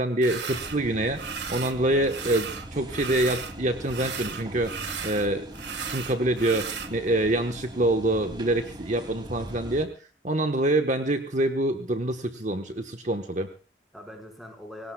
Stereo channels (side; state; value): both; normal; correlation 0.44